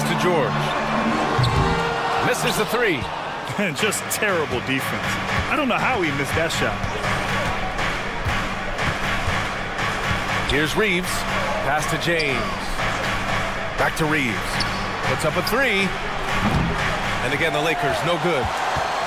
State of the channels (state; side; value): identical; both; correlation 1.00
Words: to George. Misses the three. Just terrible defense. I don't know how he missed that shot. Here's Reeves. Pass to James. Back to Reeves. Puts up a three. And again, the Lakers, no good.